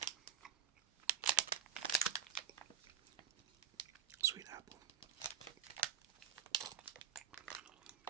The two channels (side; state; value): left; quieter; 8.0 dB